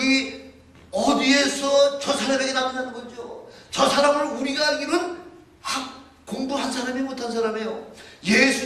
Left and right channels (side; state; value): both; identical; correlation 1.00